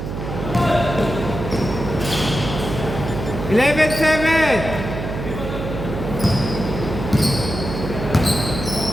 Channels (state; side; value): noise; right; hum, 6 dB below the sound